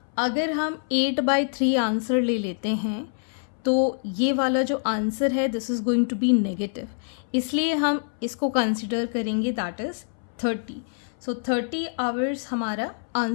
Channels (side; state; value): right; silent; 60 dB below the other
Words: अगर हम 8/3 आंसर ले लेते हैं तो ये वाला जो आंसर है this is going to be negative, इसलिए हम इसको कंसिडर करेंगे, दैट इज़ 30. सो 30 आवर्स हमारा